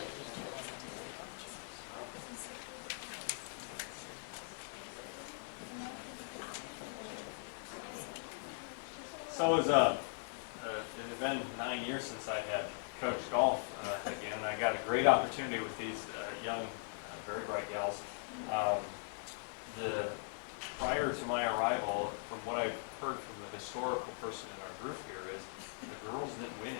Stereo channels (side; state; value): right; silent; 51 dB below the other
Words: So it had been 9 years since I had coached golf again, and I got a great opportunity with these young, very bright gals. Prior to my arrival, from what I've heard from the historical person in our group here, is the girls didn't win